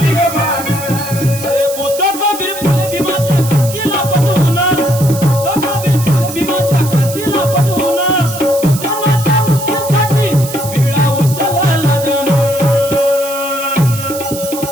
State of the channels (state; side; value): noise; right; hiss, 10 dB below the sound